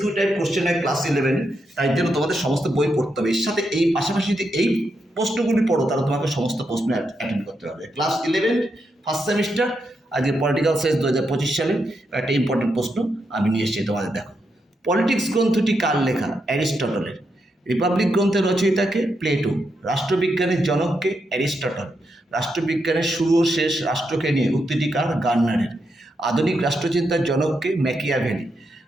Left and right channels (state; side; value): normal; both; correlation 0.83